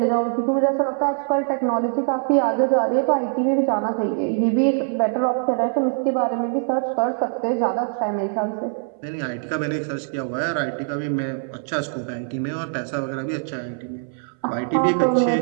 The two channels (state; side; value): silent; left; 61 dB below the other